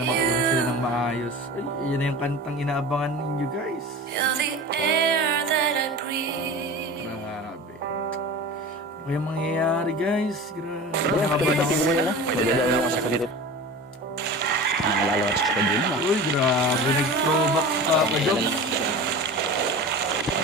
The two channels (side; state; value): both; normal; correlation 0.34